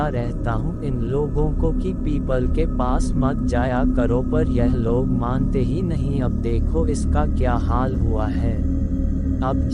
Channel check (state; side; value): identical; both; correlation 1.00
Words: रहता हूँ इन लोगों को कि पीपल के पास मत जाया करो, पर यह लोग मानते ही नहीं। अब देखो इसका क्या हाल हुआ है। अब